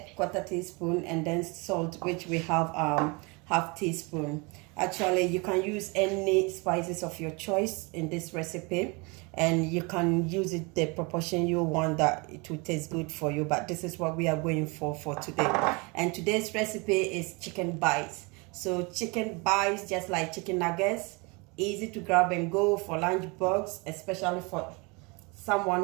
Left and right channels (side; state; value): left; quieter; 28.7 dB